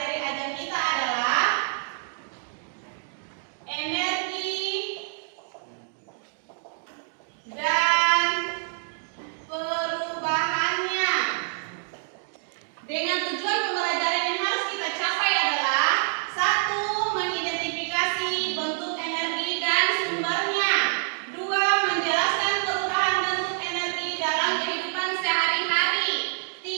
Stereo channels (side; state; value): left; silent; digital silence